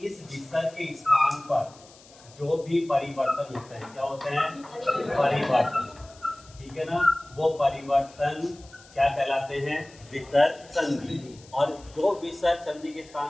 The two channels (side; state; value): left; noise; hiss, 24 dB below the sound